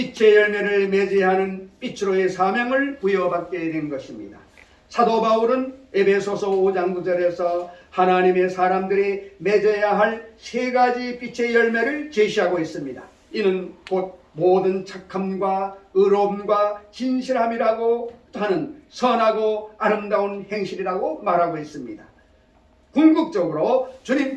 열매를 맺어야 하는 빛으로의 사명을 부여받게 된 것입니다. 사도 바울은 에베소서 5장 9절에서 하나님의 사람들이 맺어야 할 세 가지 빛의 열매를 제시하고 있습니다. 이는 곧 모든 착함과 의로움과 진실함이라고 하는 선하고 아름다운 행실이라고 말하고 있습니다. 궁극적으로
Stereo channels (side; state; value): both; identical; correlation 1.00